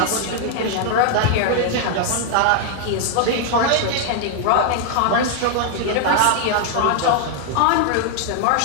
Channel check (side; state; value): both; different; correlation 0.00